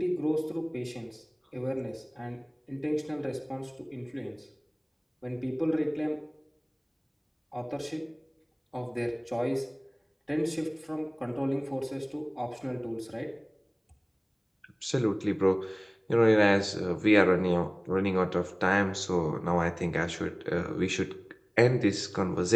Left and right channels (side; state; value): both; identical; correlation 1.00